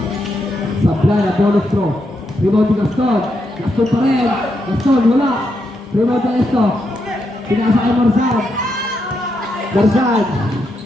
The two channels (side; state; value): both; normal; correlation 0.81